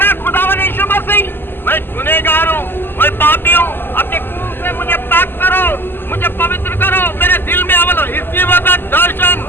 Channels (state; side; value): late; right; 0.099 ms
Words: खुदावंद यीशु मसीह, मैं गुनहगार हूँ, मैं पापी हूँ, अपने खून से मुझे पाक करो, मुझे पवित्र करो, मेरे दिल में अमल हो। इसी वक्त दर्शन,